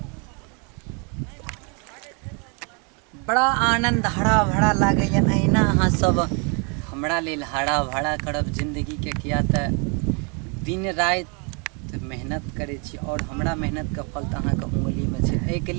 बड़ा आनंद हरा भरा लागे। अहिना अहाँ सब हमरा लेल हरा भरा करब जिंदगी के, किया त दिन रात मेहनत करे छी और हमरा मेहनत के फल त अहाँके उंगली में छै। एहिके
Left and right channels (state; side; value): quieter; left; 35.1 dB